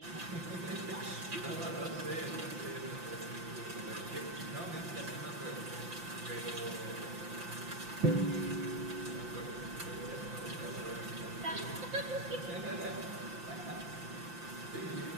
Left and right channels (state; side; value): late; left; 5.8 ms